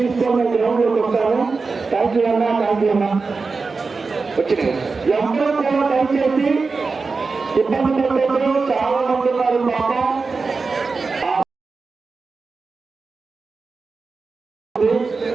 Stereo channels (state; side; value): quieter; left; 4.3 dB